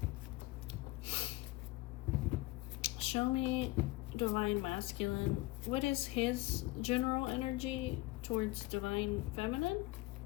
Show me Divine Masculine. What is his general energy towards Divine Feminine?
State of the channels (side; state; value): right; quieter; 20.3 dB